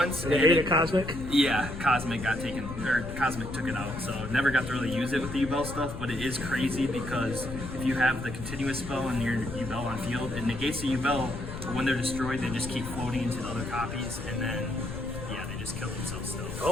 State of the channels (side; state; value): left; noise; rumble, 8 dB below the sound